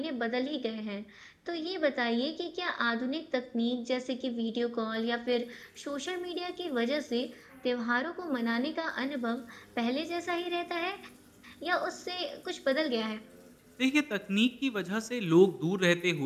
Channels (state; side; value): identical; both; correlation 1.00